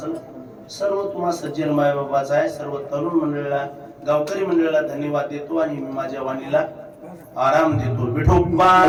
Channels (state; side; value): identical; both; correlation 1.00